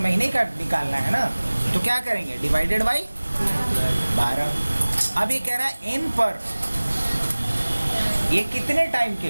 का निकालना है ना, तो क्या करेंगे, डिवाइडेड बाई 12। अब ये कह रहा है n पर, ये कितने टाइम के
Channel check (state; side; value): inverted; both; correlation -1.00